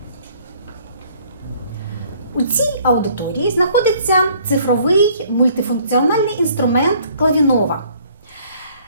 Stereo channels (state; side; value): inverted; both; correlation -0.59